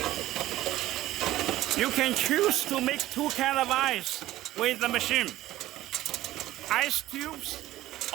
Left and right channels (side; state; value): left; quieter; 15.4 dB